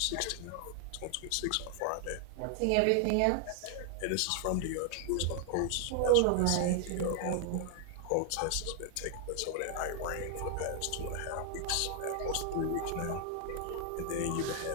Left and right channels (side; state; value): both; different; correlation 0.00